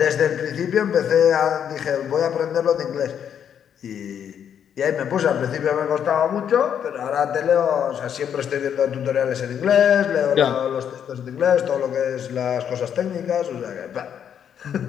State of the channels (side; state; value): right; quieter; 8.6 dB